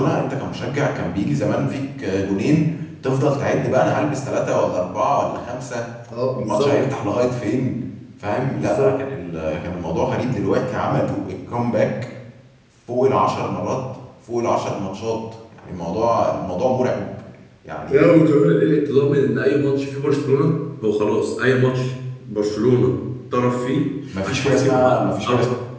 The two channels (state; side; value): identical; both; correlation 1.00